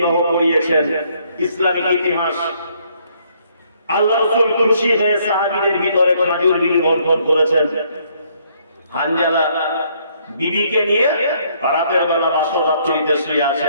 করিয়েছেন। ইসলামিক ইতিহাস আল্লাহ রাসূল খুশি হয়ে সাহাবীদের ভিতরে খেজুর বিলি করেছেন। হানজালা বিবিকে নিয়ে রাতের বেলা বাসর রাত্রিতে শুয়ে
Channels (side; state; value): both; inverted; correlation -0.68